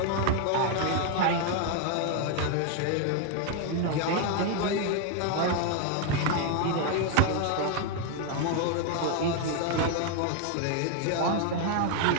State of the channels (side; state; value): both; different; correlation 0.00